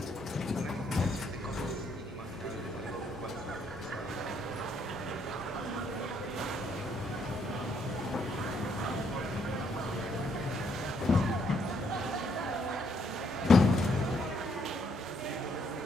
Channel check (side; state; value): both; normal; correlation 0.71